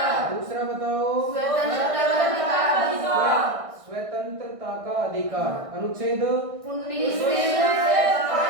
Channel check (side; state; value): left; late; 1.6 ms